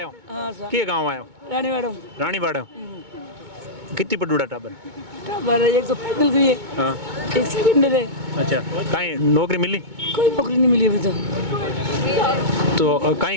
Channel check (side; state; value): left; late; 2.2 ms